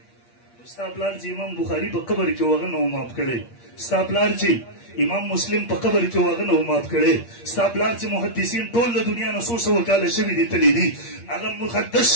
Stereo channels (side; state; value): right; late; 8.5 ms